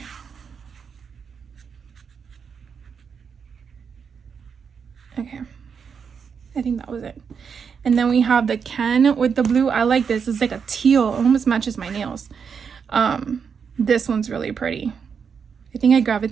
Okay, I think that was it. And then we have the Ken with the blue. I like this. It's like a teal. It almost matches my nails. This one's really pretty. I think I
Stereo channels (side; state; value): left; quieter; 6.4 dB